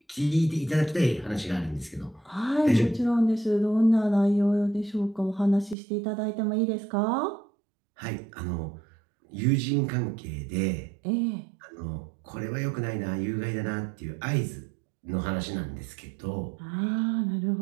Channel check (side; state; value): left; drops out; at 5.8 s